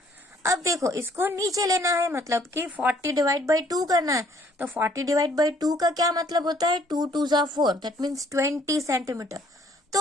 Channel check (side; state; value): both; normal; correlation 0.62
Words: अब देखो, इसको नीचे लेना है, मतलब कि 40 डिवाइड बाई 2 करना है, तो 40 डिवाइड बाई 2 का क्या मतलब होता है, 2 2 जा 4, दैट मीन्स 20 सेंटीमीटर। तो